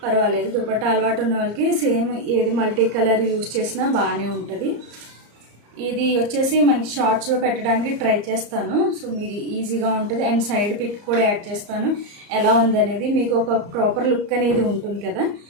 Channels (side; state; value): left; late; 34 ms